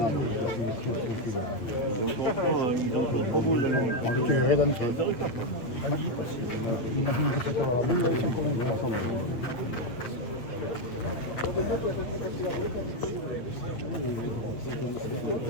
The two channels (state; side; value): late; right; 8.2 ms